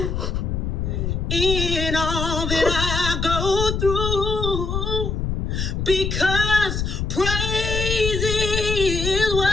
In all that I go through, because praise is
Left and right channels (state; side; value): noise; left; rumble, 2 dB below the sound